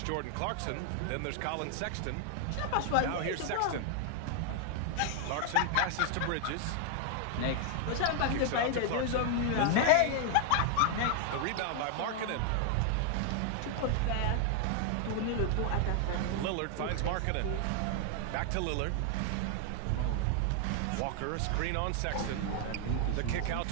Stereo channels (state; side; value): different; both; correlation 0.00